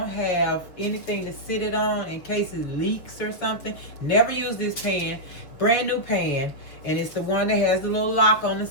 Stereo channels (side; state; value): right; late; 6.7 ms